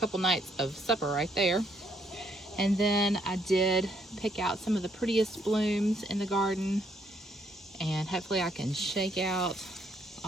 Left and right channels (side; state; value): both; normal; correlation 0.70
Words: nights of supper right there. And then I did pick out some of the prettiest blooms in the garden, and hopefully I can shake out